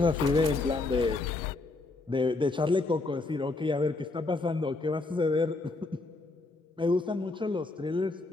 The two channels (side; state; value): right; quieter; 3.3 dB